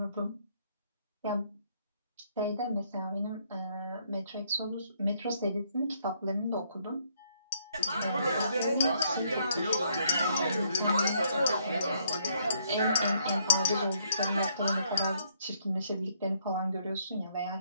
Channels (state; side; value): inverted; both; correlation -0.69